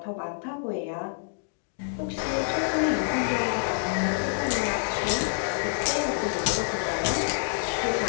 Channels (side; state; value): right; silent; digital silence